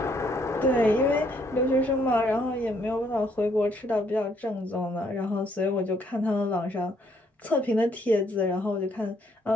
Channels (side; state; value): both; normal; correlation 0.69